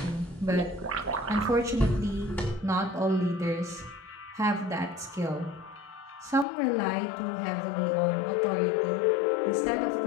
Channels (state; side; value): drops out; right; at 6.5 s